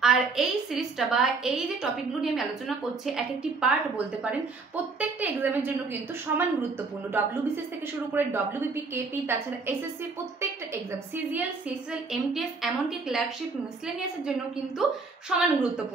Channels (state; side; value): quieter; left; 4.2 dB